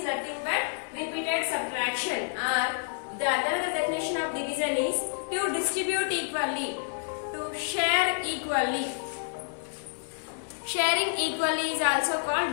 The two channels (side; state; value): right; silent; 58 dB below the other